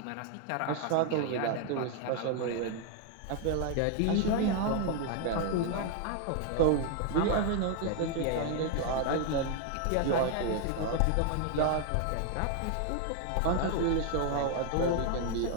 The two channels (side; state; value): both; different; correlation 0.00